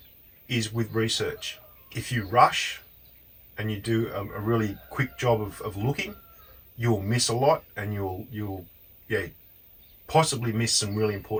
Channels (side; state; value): both; identical; correlation 1.00